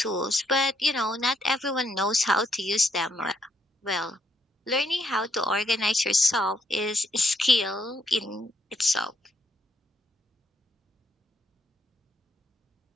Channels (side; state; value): both; normal; correlation 0.74